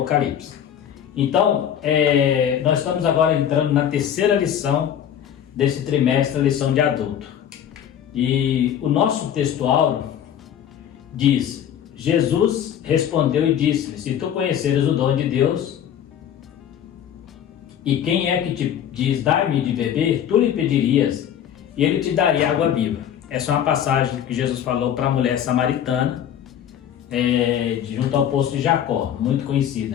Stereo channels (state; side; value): quieter; right; 9.6 dB